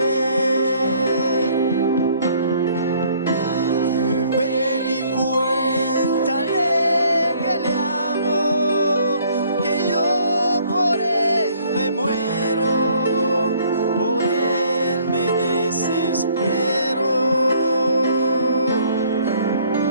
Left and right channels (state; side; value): inverted; both; correlation -0.61